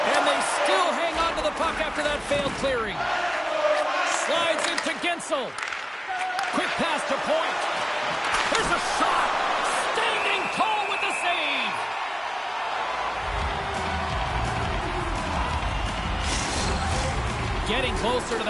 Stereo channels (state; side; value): identical; both; correlation 1.00